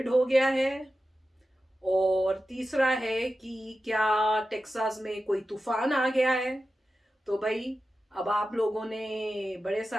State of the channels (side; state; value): both; normal; correlation 0.93